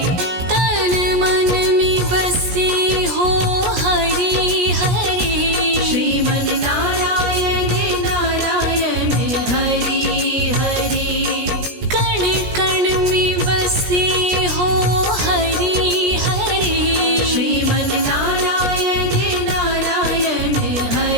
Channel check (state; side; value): late; left; 17 ms